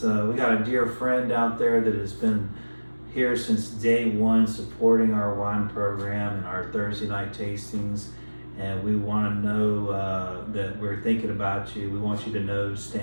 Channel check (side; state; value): both; inverted; correlation -1.00